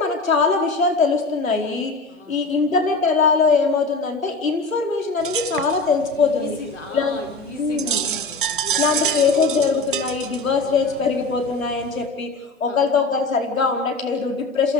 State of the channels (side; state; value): right; quieter; 3.4 dB